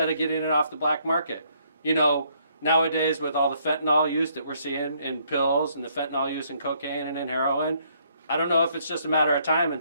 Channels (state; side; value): inverted; both; correlation -0.68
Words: of getting it off the black market. You know, nowadays with all the fentanyl use that we're seeing in pills and the fentanyl use in cocaine and in heroin, I don't know if it's just a matter of time